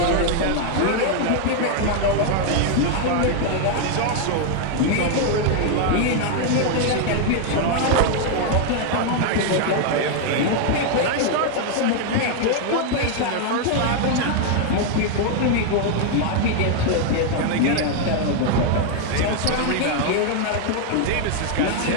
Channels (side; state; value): both; different; correlation 0.01